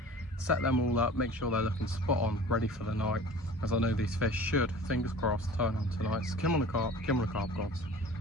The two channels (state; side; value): normal; both; correlation 0.42